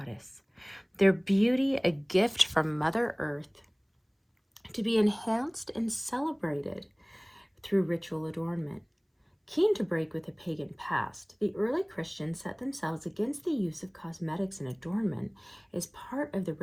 their beauty a gift from Mother Earth, to be enhanced and celebrated through ritual adornment. Keen to break with the pagan past, the early Christians set themselves against the use of cosmetics and adornment as part of the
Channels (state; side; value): identical; both; correlation 1.00